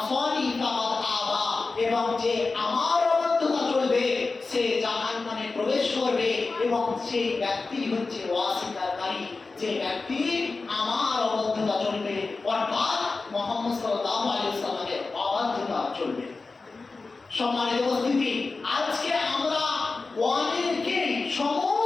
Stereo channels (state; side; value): quieter; right; 3.9 dB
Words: ফাকাদ আবা, এবং যে আমার অবাধ্যতা চলবে সে জাহান্নামে প্রবেশ করবে। এবং সেই ব্যক্তি হচ্ছে অস্বীকারী, যে ব্যক্তি আমার অবাধ্যতা চলবে, অর্থাৎ মুহাম্মদ সাল্লাল্লাহু আলাইহি ওয়াসাল্লামের অবাধ্যতা চলবে। সম্মানিত উপস্থিতি, আজকে আমরা অনেকেই,